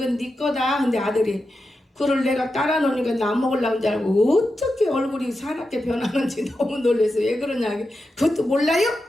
네 거다. 근데 아들이 그걸 내가 따라 놓으니까 나 먹으려고 줄 알고 어떻게 얼굴이 사납게 변하는지 너무 놀라서 왜 그러냐. 그것도 몰라요?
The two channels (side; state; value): both; normal; correlation 0.89